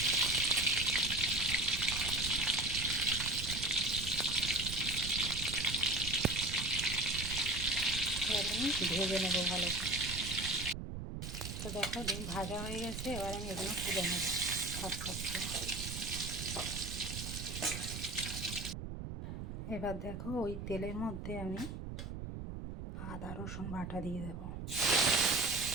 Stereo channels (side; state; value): right; noise; rumble, 7 dB below the sound